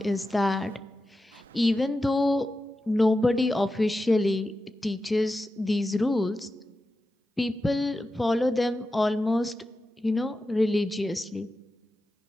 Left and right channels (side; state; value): both; normal; correlation 0.92